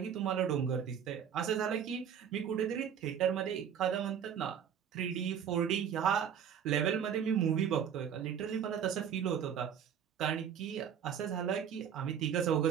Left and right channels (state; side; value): quieter; left; 8.3 dB